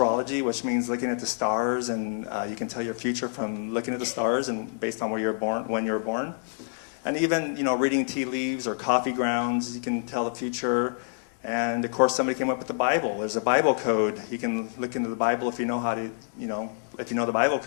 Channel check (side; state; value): right; silent; digital silence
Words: which means looking at the stars, and you can tell your future from looking at the stars and based on where you're born, when you're born. And even, reading tea leaves or coffee grounds, you can tell the future. And of course, somebody came up with the Bible. There's a Bible code. You can look into the Bible if you know how to, if you know the Bible